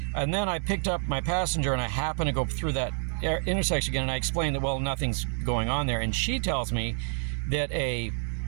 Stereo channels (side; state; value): left; silent; 58 dB below the other